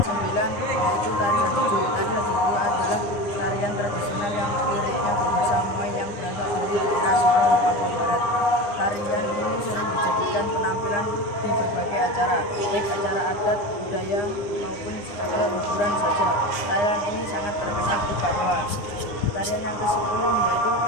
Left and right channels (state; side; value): late; right; 9.8 ms